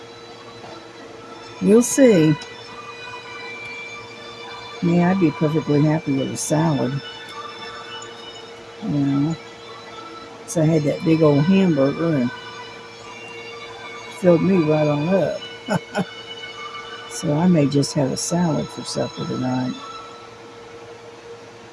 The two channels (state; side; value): identical; both; correlation 1.00